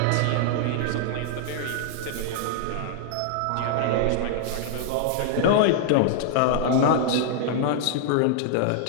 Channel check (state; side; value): different; both; correlation -0.01